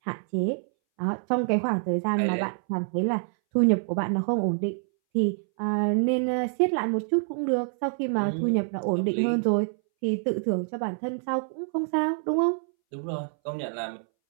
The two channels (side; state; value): left; silent; 60 dB below the other